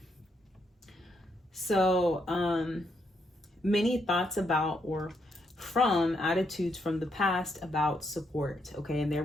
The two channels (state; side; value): normal; both; correlation 0.77